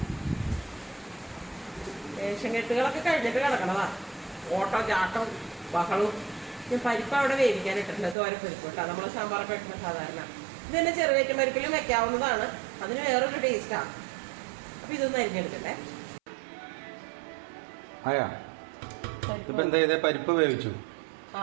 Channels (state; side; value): drops out; left; at 8.2 s